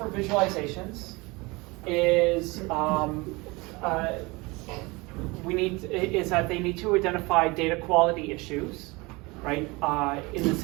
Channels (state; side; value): quieter; left; 24.7 dB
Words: visualizations is is that they need to identify data quality issues, right? In the